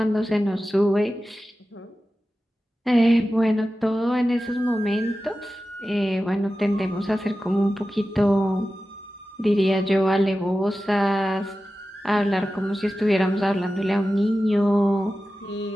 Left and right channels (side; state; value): both; normal; correlation 0.94